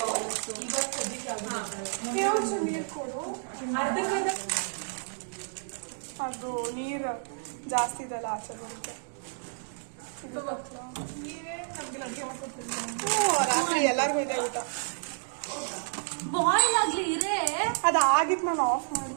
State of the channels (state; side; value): silent; left; digital silence